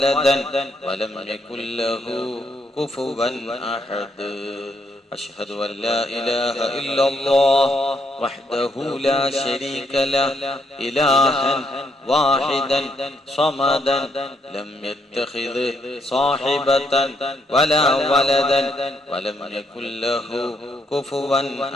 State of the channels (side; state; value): both; normal; correlation 0.74